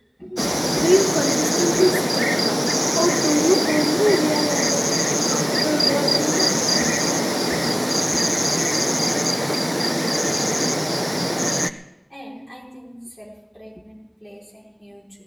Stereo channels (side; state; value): both; identical; correlation 1.00